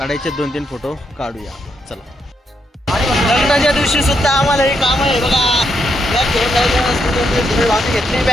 2-3 फोटो काढूया. चला लग्नाच्या दिवशी सुद्धा आम्हाला हे काम आहे बघा. घेतली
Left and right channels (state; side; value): normal; both; correlation 0.79